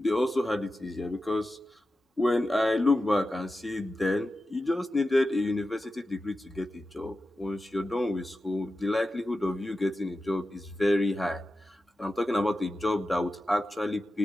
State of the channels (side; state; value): both; normal; correlation 0.92